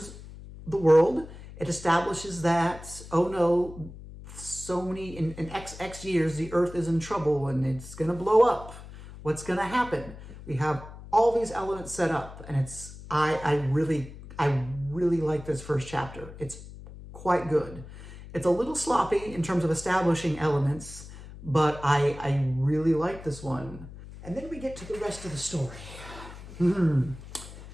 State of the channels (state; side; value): noise; left; hum, 15 dB below the sound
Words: the world. It establishes that, oh no, so many, in X years, the Earth is in trouble and it's going to blow up. What's going to happen? We have all these elements set up, and I really like this first chapter. It's quite good. It's a little sloppy in terms of establishing elements, but I really like this one. And then we get to the rest of the story.